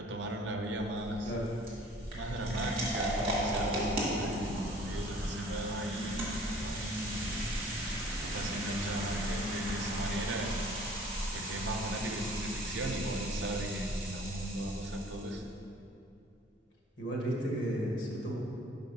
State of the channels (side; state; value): both; normal; correlation 0.52